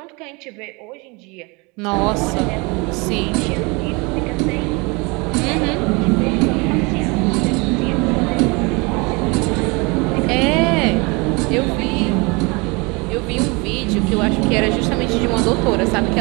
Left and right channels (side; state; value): left; quieter; 27.7 dB